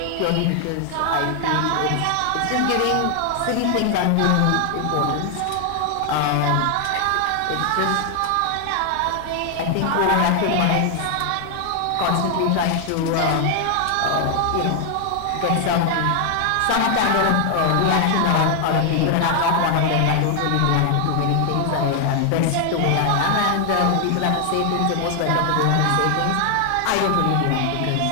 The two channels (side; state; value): both; different; correlation 0.00